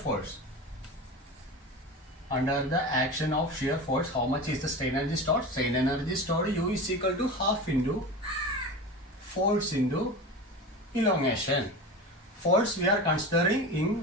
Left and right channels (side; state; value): both; normal; correlation 0.29